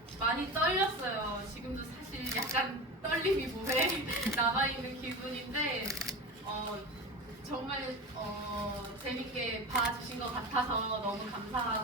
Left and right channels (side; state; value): both; normal; correlation 0.27